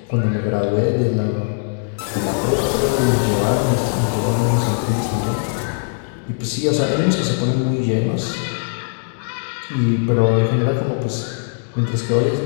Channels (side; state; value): right; silent; digital silence